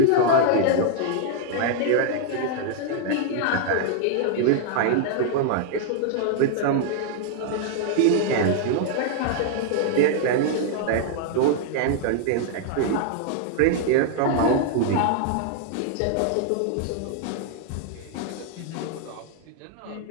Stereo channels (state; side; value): different; both; correlation 0.00